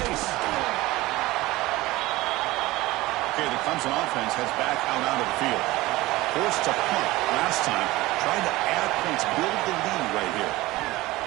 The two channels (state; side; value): quieter; left; 19.0 dB